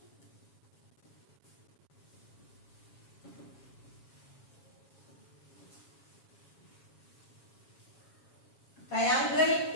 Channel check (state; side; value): late; right; 7.3 ms